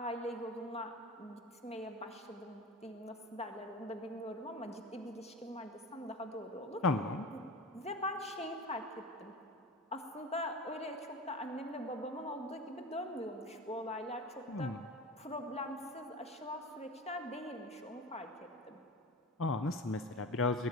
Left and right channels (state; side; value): normal; both; correlation 0.32